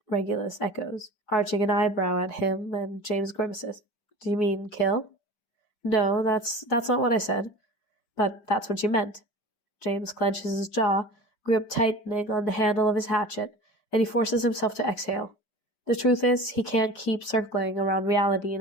Regulus echoes, arching an eyebrow at him, and James grimaces. "Do you mean kill?" "No, that's not what I said. But that's what you meant." James clenches his jaw, grip tightening on the handle of his hatchet, and he forces himself to exhale. The truth is, he can't keep circling around reality in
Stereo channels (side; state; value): right; late; 4.7 ms